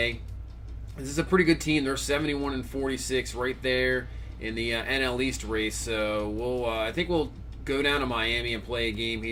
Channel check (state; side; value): identical; both; correlation 1.00